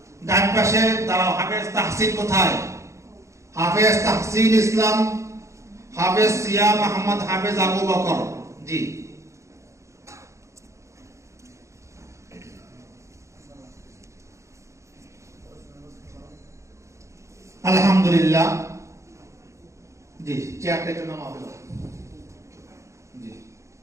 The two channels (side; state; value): left; late; 0.14 ms